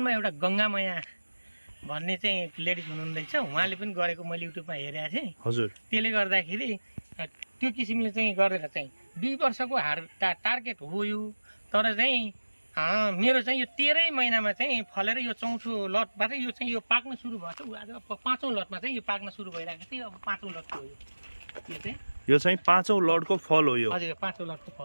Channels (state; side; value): inverted; both; correlation -1.00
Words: एउटा गङ्गामया भन्ने चाहिँ लेडिज हुनुहुँदैछ, उहाँले पनि गरेको मैले युट्युबमा हेरेको थिएँ। हजुर त्यसले गर्दाखेरि त्यो किसिमले चाहिँ गरेर चाहिँ 2 वर्षको टार्गेट हो यो। तर चाहिँ मेरो चाहिँ यो 13 महिनामा चाहिँ फलेर यो चौथो लटबाट यो चाहिँ यो पाक्न सुरु भएको छ। आज 5औँ लटमा चाहिँ यो पाक्न सुरु भइरहेको थियो। अब 5औँ लटको हो यो चाहिँ 5औँ लटको फल हो यो। हजुर 5औँ लटको